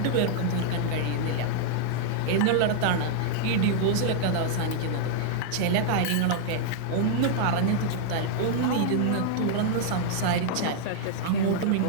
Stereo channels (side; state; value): both; different; correlation -0.01